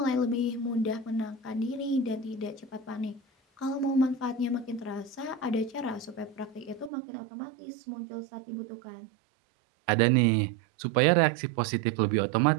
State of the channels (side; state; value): left; drops out; at 6.9 s